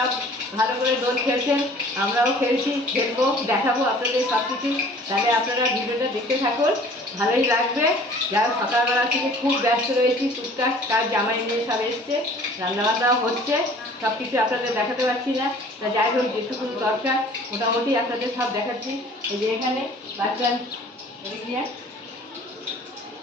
ভালো করে দোল খেলছেন, আমরাও খেলছি, খেলবো, দেখাবো আপনাদের সব কিছু। তাহলে আপনারা ভিডিওটা দেখতে থাকুন, ভালোই লাগবে। যারা সকালবেলা থেকে খুব ব্যস্ত রয়েছি, টুকটাক কাজ জামাই নিয়ে সব এসছে, রান্নাবান্নাও হচ্ছে, সব কিছু আপনাদের দেখাতে পারছি না। তা যাই হোক, যেটুকু দরকার মোটামুটি আপনাদের সব দেখাচ্ছি। এই যে এখানে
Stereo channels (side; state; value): both; normal; correlation 0.50